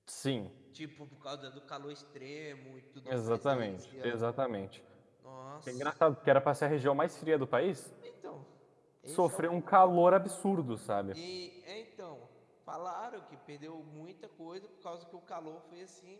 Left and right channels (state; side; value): identical; both; correlation 1.00